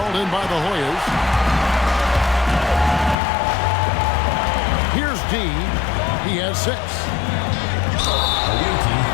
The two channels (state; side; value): drops out; right; at 3.2 s